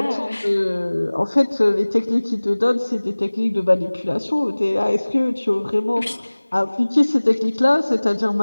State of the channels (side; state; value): both; inverted; correlation -1.00